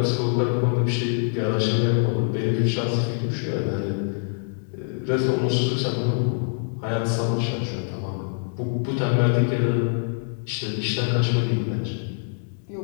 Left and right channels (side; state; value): right; silent; digital silence